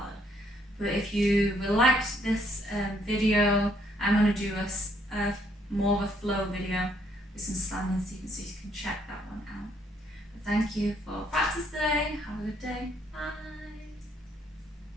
But if you liked this video, I'm going to do a more of a flow video with some standing sequences so you can check that one out. But thank you for practice today. Have a good day. Bye.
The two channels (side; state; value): both; normal; correlation 0.69